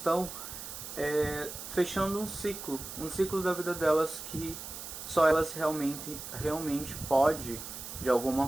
fechando um ciclo da vida delas que só elas realmente pode, de alguma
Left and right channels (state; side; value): noise; right; hiss, 10 dB below the sound